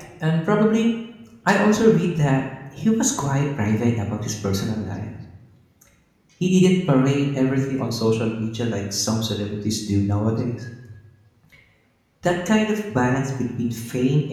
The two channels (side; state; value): both; identical; correlation 1.00